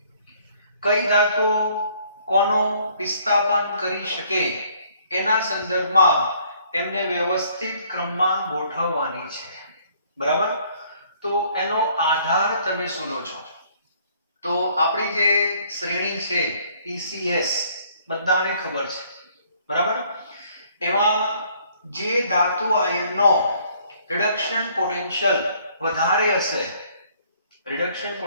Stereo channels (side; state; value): both; inverted; correlation -0.62